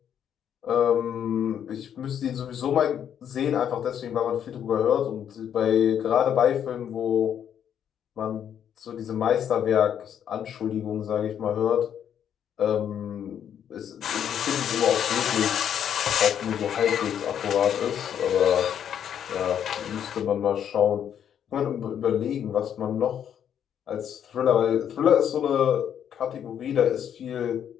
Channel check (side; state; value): right; quieter; 9.1 dB